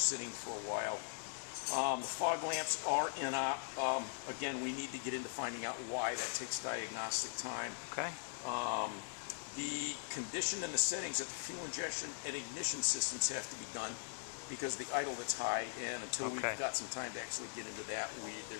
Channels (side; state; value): right; silent; digital silence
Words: for a while. The fog lamps are in op. Again, we need to get into finding out why. That takes diagnostic time. Okay. The condition and the settings of the fuel injection and ignition systems have to be done because the idle that's high, and until we've got some time to actually get into that,